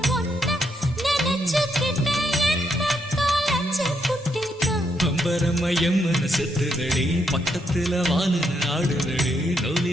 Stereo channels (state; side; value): normal; both; correlation 0.77